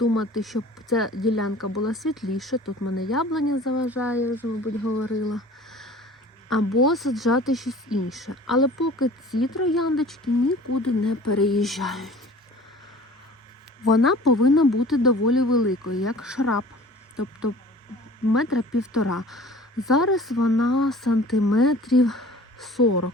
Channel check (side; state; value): both; normal; correlation 0.45